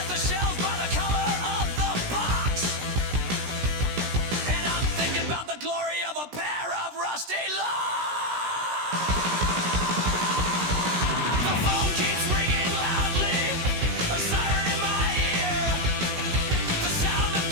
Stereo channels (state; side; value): late; left; 17 ms